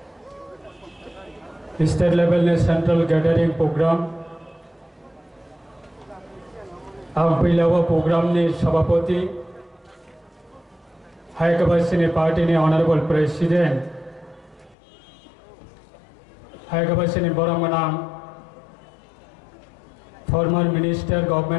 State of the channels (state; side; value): drops out; right; at 14.8 s